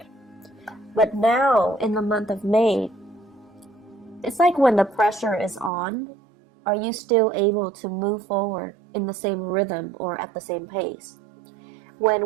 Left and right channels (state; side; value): drops out; left; at 5.7 s